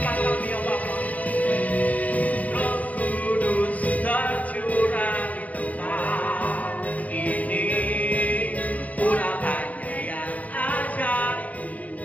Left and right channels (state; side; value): late; right; 0.073 ms